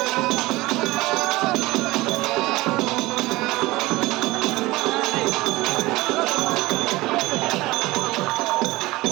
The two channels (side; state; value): left; quieter; 19.9 dB